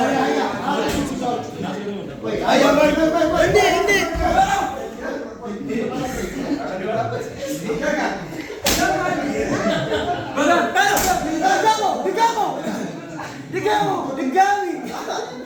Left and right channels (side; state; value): both; identical; correlation 1.00